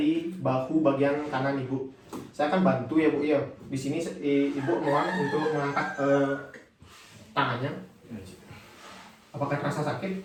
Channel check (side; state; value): both; identical; correlation 1.00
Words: bahu bagian kanan Ibu. Saya akan bantu ya, Bu ya. Di sini Ibu mohon untuk mengangkat tangannya. Apakah terasa sakit?